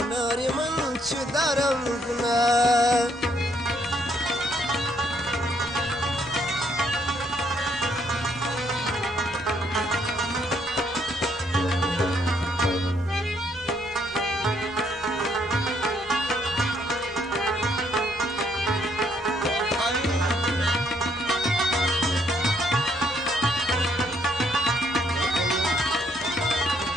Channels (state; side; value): normal; both; correlation 0.70